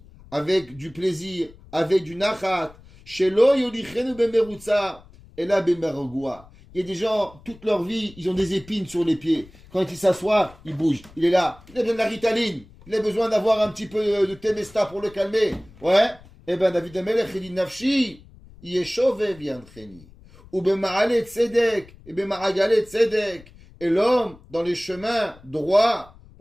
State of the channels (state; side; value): noise; left; rumble, 23 dB below the sound